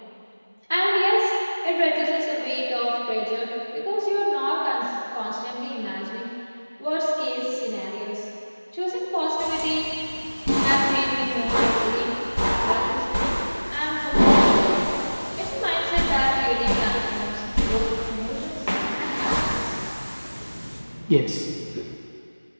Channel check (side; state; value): both; inverted; correlation -1.00